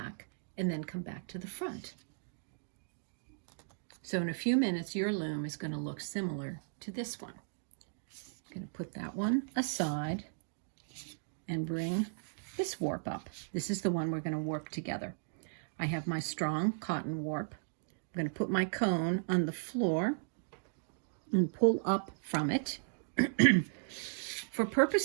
and then come back to the front. So in a few minutes your loom is going to look similar to this one. I'm going to put that one aside and bring this warp up. This is the one we're going to warp together. I have my strong cotton warp. I'm going to put my cone on the floor and pull up from it. For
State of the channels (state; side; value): silent; left; digital silence